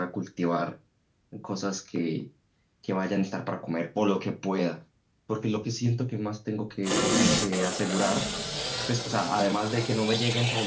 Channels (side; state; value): both; identical; correlation 1.00